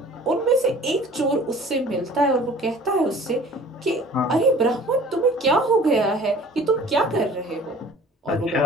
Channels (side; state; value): both; normal; correlation 0.48